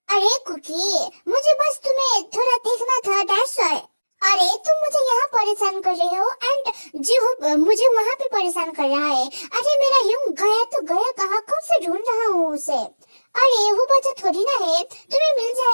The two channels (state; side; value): inverted; both; correlation -1.00